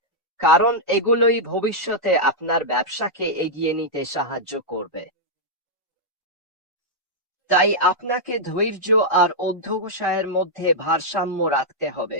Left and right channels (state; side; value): normal; both; correlation -0.07